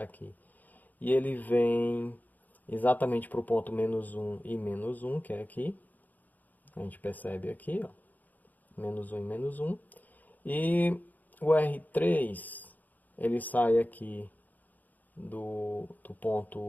E ele vem exatamente para o ponto menos 1 e menos 1, que é aqui. A gente percebe aqui, ó, menos 1 e menos 1. E o R3, ele sai aqui do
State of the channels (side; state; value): right; late; 0.082 ms